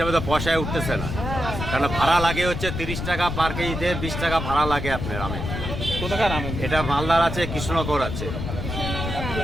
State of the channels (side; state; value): left; noise; rumble, 5 dB below the sound